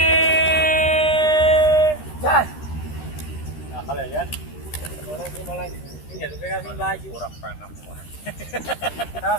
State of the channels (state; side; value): late; right; 13 ms